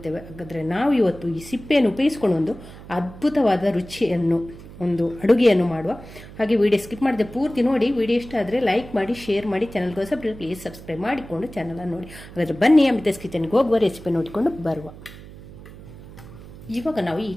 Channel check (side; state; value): right; noise; hum, 17 dB below the sound